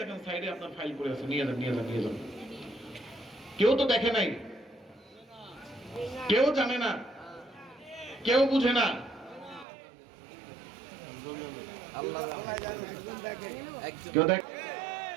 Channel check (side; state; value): left; drops out; at 9.7 s